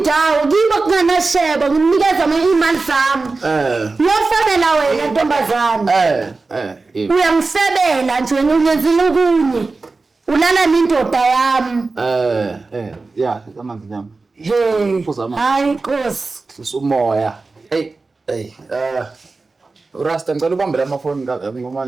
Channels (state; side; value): quieter; left; 3.8 dB